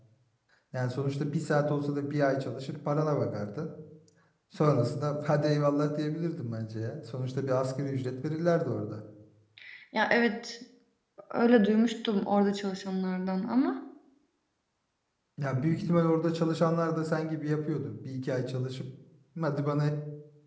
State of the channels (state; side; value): identical; both; correlation 1.00